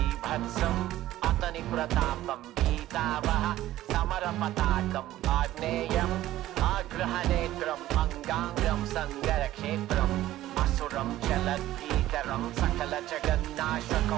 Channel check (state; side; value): quieter; left; 14.7 dB